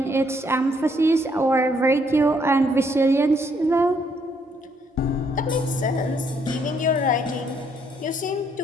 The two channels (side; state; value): both; normal; correlation 0.70